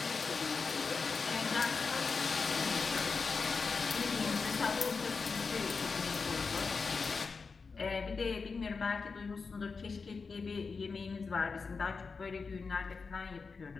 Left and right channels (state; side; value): quieter; right; 4.8 dB